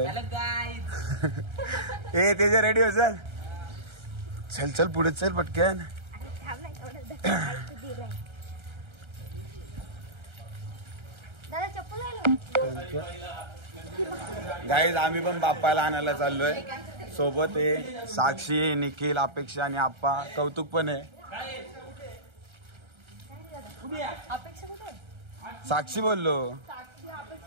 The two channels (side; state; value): left; late; 1.3 ms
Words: ए तेजे रेडी हो. चल चल चल पुढे चल पटकन. गाईज आम्ही पण बाप्पाला आणायला चाललोय. सोबत आहे साक्षी, निखिल, अपेक्षा आणि आप्पा. कौतुक पण आहे. साक्षी बोललो,